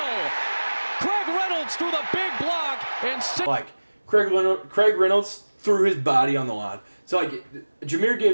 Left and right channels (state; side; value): inverted; both; correlation -1.00